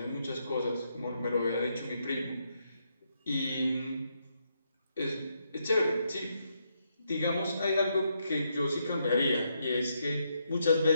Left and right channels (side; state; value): both; inverted; correlation -0.79